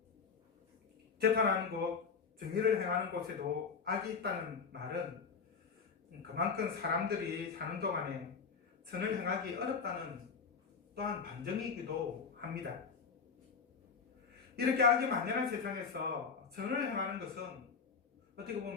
재판하는 곳, 정의를 행하는 곳에도 악이 있다는 말은 그만큼 사람들이 사는 동안에 선을 행하기 어렵다는 또한 반증이기도 합니다. 이렇게 악이 만연한 세상에서 선을 행하는 것은 어떻게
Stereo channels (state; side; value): quieter; right; 5.5 dB